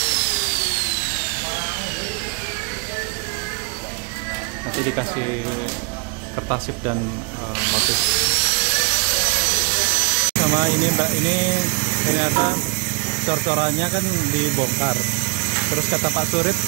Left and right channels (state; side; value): quieter; left; 30.7 dB